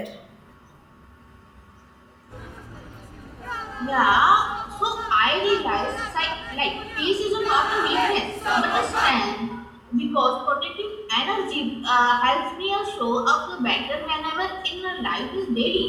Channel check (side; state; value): both; identical; correlation 1.00